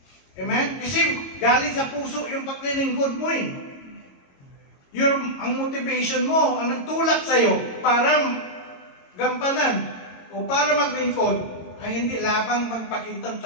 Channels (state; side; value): late; right; 22 ms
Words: Amen? Kasi galing sa puso yung paglilingkod mo eh. Ang motivation mo, ang nagtulak sa'yo para gampanan o para maglingkod ay hindi labang magpakitang